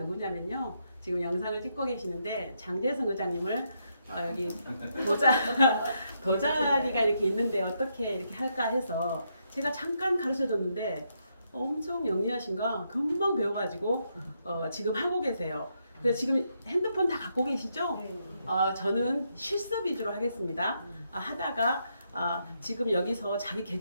지금 영상을 찍고 계시는데 장재성 의장님을 여기 도자리가 이렇게 있는데 어떻게 이렇게 할까 해서 제가 잠깐 가르쳐 줬는데 엄청 영리하신가 금방 배워가지고 지금 하고 계세요. 그래서 지금 핸드폰 다 갖고 계시죠? 저는 실습 위주로 하겠습니다. 하다가 지금 여기서 자기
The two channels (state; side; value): inverted; both; correlation -0.79